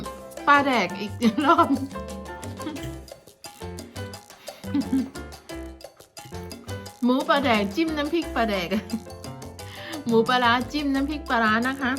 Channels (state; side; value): identical; both; correlation 1.00